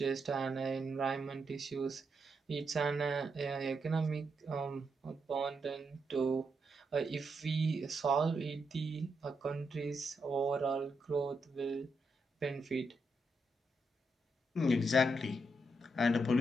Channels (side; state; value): both; normal; correlation 0.82